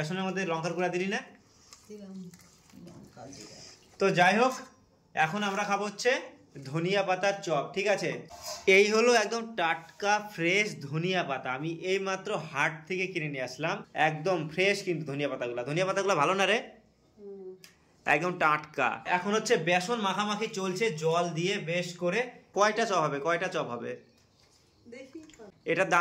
মধ্যে লঙ্কার গুঁড়া দিলি না? তো যাই হোক, এখন আমরা খাবো হচ্ছে ধনিয়া পাতার চপ। ঠিক আছে, এই হলো একদম টাটকা ফ্রেশ ধনিয়া পাতা। আমি এই মাত্র হাট থেকে কিনে নিয়ে আসলাম, একদম ফ্রেশ কিন্তু ধনিয়া পাতাগুলো ভালো না রে, একদম টাটকা। এখন হচ্ছে বেসন মাখামাখি চলছে জল দিয়ে বেশ করে। কয়টা চপ হবে? এটার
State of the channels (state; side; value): identical; both; correlation 1.00